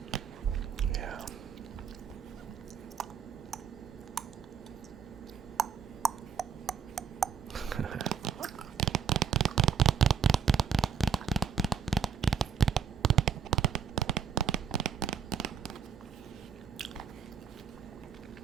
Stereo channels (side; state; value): left; quieter; 7.3 dB